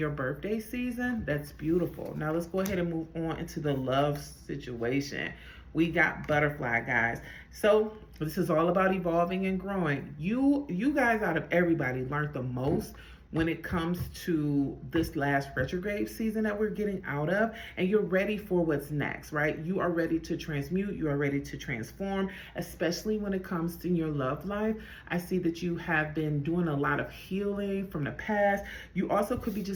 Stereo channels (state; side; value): identical; both; correlation 1.00